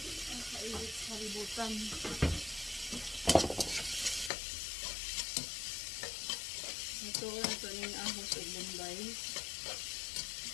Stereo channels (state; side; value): drops out; right; at 4.3 s